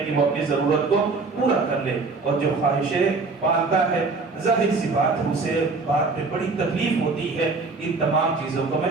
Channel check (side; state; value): left; quieter; 4.0 dB